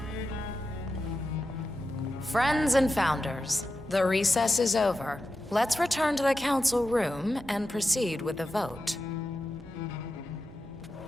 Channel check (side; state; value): both; normal; correlation 0.90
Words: Friends and founders, the recess is over. Let's return to the council room and proceed with the vote.